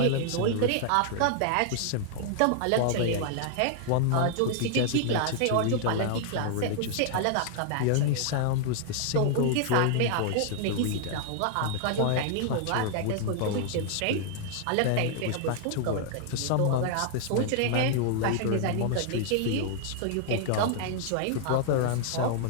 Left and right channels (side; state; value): both; different; correlation 0.00